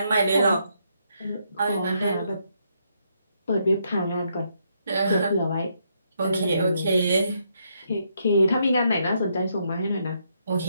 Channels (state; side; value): inverted; both; correlation -0.76